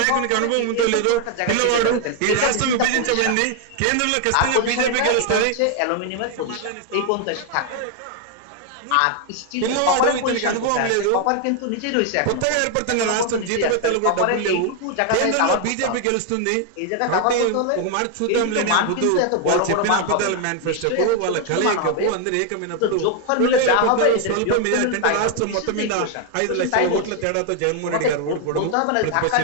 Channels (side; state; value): both; different; correlation 0.00